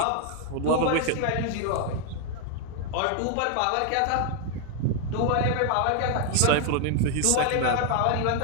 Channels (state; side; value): different; both; correlation 0.00